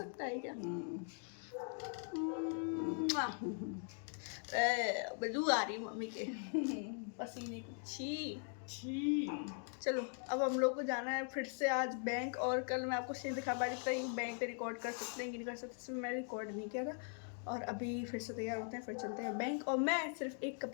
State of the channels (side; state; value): right; silent; 50 dB below the other